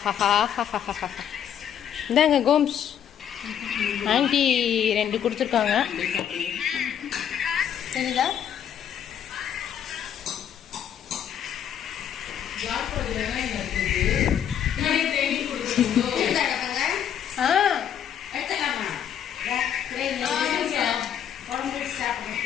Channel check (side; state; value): right; quieter; 9.3 dB